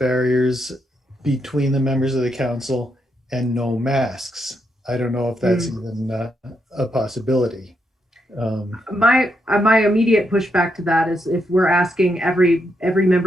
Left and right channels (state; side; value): normal; both; correlation 0.80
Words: between the members of the council and no masks, I don't know if that's even a possibility. My immediate pushback to that is, if we're asking every